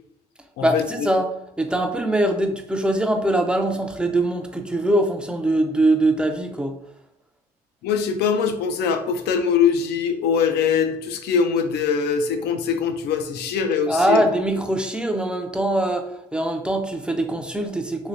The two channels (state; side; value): normal; both; correlation 0.57